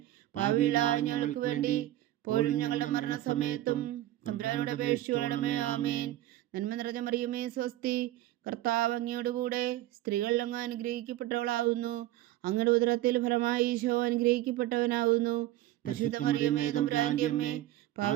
പാപികളായ ഞങ്ങൾക്ക് വേണ്ടി ഇപ്പോഴും ഞങ്ങളുടെ മരണസമയത്തും തമ്പുരാനോട് അപേക്ഷിച്ചുകൊള്ളണമേ. ആമേൻ. നന്മ നിറഞ്ഞ മറിയമേ സ്വസ്തി, കർത്താവ് അങ്ങയോടുകൂടെ സ്ത്രീകളിൽ അങ്ങ് അനുഗ്രഹിക്കപ്പെട്ടവളാകുന്നു. അങ്ങയുടെ ഉദരത്തിൽ ഫലമായി ഈശോ അനുഗ്രഹിക്കപ്പെട്ടവനാകുന്നു. പരിശുദ്ധ മറിയമേ തമ്പുരാന്റെ അമ്മേ,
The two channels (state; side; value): quieter; left; 14.7 dB